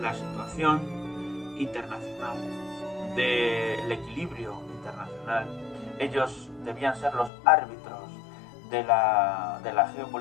situación internacional, del equilibrio internacional. Ellos debían ser los árbitros de la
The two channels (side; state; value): right; drops out; at 7.3 s